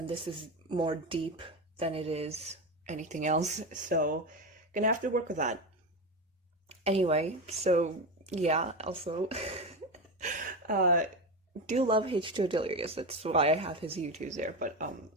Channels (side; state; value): both; normal; correlation 0.18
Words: this is more deep than it is anything else. So gonna have to work with that. Anyway, so yeah, also uh do love H2O Delirious. That's why I have his YouTubes there. But